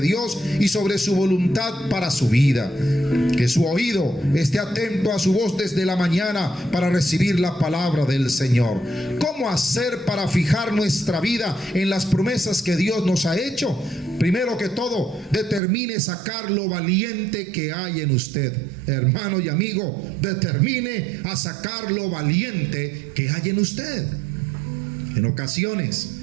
y sobre su voluntad para su vida. Que su oído esté atento a su voz desde la mañana para recibir la palabra del Señor. ¿Cómo hacer para fijar nuestra vida en las promesas que Dios nos ha hecho? Primero que todo, determine sacar lo valiente que hay en usted. Hermano y amigo, determine a sacar lo valiente que hay en usted. En ocasiones,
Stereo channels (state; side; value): drops out; left; at 15.6 s